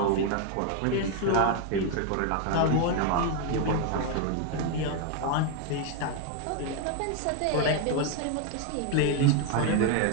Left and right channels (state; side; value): different; both; correlation 0.01